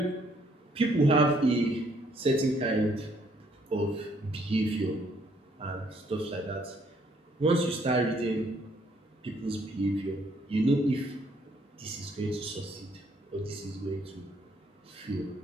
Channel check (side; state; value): both; normal; correlation 0.67